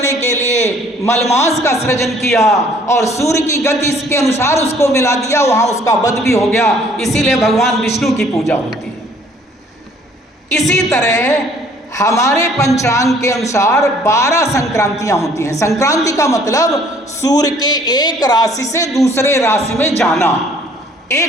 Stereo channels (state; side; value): normal; both; correlation 0.58